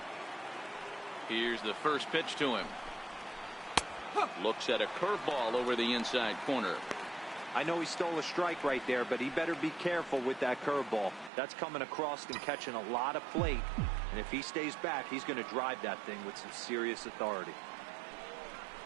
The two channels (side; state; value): left; drops out; at 11.3 s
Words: Here's the first pitch to him. Looks at a curveball over the inside corner. I know he stole a strike right there, but he better be careful with that curveball. That's coming across and catching a lot of plate. And if he stays back, he's going to drive that thing with some serious authority.